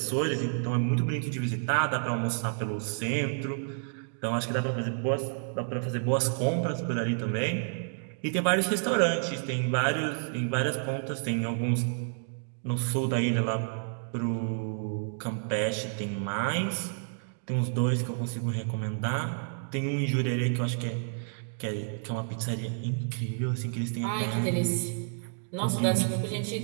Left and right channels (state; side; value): silent; left; digital silence